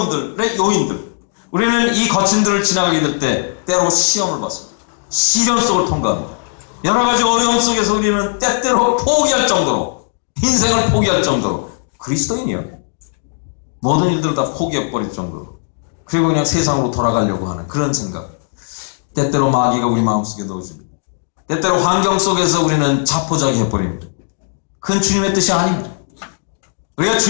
요인들, 우리는 이 거친들을 지나가게 될 때 때로 시험을 받습니다. 시련 속을 통과합니다. 여러 가지 어려움 속에서 우리는 때때로 포기할 정도로, 인생을 포기할 정도로, 그리스도인이요, 모든 일들을 다 포기해버릴 정도로, 그리고 그냥 세상으로 돌아가려고 하는 그런 생각, 때때로 마귀가 우리 마음속에 넣어줍니다. 때때로 환경 속에서 우리는 자포자기 해버립니다. 그건 주님의 뜻이 아닙니다. 우리가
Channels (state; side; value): silent; right; 68 dB below the other